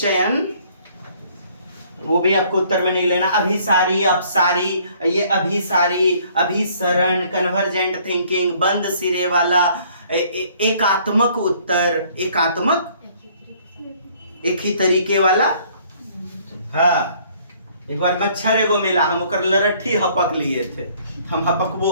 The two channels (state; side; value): inverted; both; correlation -0.60